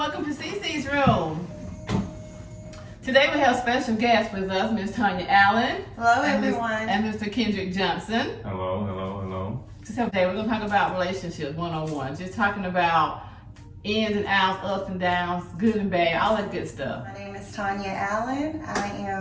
to CC's Room. Today we have special guests with us, Ms. Tanya Allen. Hello everyone. And Mr. Kendrick Johnson. Hello. Today we're going to talk about relationships one-on-one. Just talking about ins and outs, ups and downs, good and bad, all that good stuff. My name is Tanya Allen. I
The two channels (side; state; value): both; identical; correlation 1.00